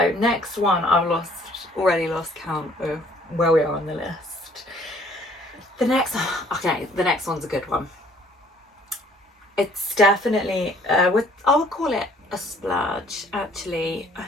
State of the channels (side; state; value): both; normal; correlation 0.59